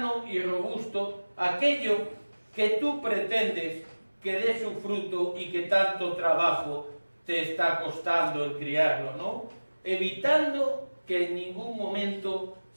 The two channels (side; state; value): both; inverted; correlation -1.00